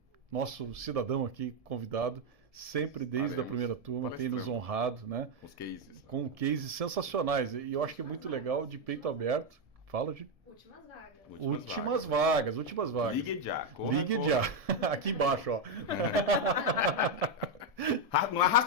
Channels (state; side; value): late; left; 1.7 ms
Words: nosso cidadão aqui convidado, sempre desde a primeira turma, tem nos honrado, né? Os cases. Com cases sensacionais. E eu acho que é muito legal, de peito aberto. Fala de últimas vagas. Ligue já. Ligue já. Aqui embaixo, ó. Não